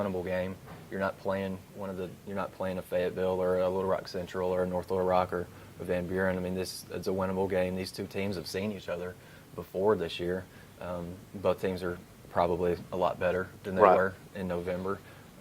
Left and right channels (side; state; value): both; identical; correlation 1.00